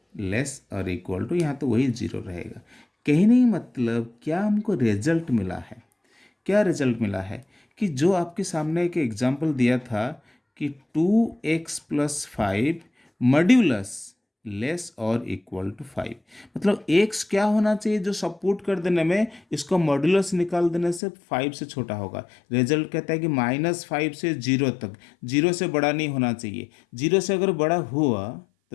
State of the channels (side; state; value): right; drops out; at 21.0 s